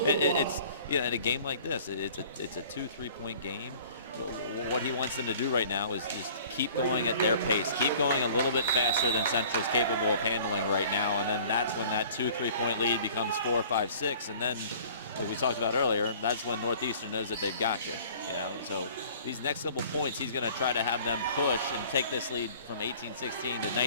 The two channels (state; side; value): inverted; both; correlation -0.50